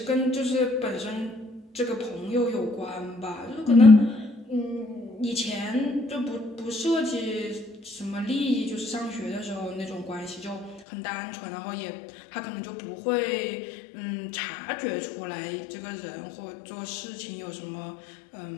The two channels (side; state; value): right; drops out; at 10.9 s